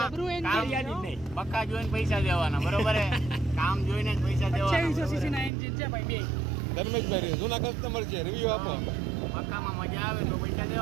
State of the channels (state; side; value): drops out; left; at 5.5 s